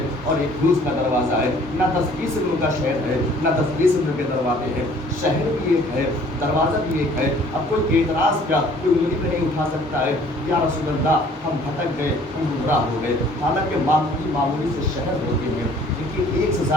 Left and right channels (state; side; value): normal; both; correlation 0.55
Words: اور ایک روز کا دروازہ ہے، نہ 10-20 علم کا شہر ہے نہ 10-20 علم کے دروازے ہیں. شہر بھی ایک ہے، دروازہ بھی ایک ہے. اب کوئی اعتراض کیا کوئی انگلی پہ نہیں اٹھا سکتا ہے یا رسول اللہ ہم بھٹک گئے، ہم گمراہ ہو گئے. حالانکہ معمولی سے شہر ہوتے ہیں جن کے ایک سے